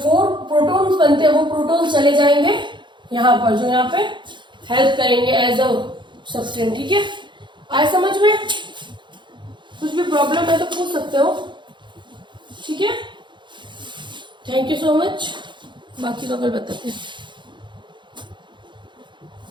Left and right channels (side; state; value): left; late; 0.23 ms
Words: प्रोटॉन्स बनते हैं वो प्रोटॉन्स चले जाएंगे यहाँ पर, जो यहाँ पे हेल्प करेंगे एज अ सब्सटेंस। ठीक है, आए समझ में। सकते हो। ठीक है, थैंक यू सो मच। बाकी तो कल बताते हैं।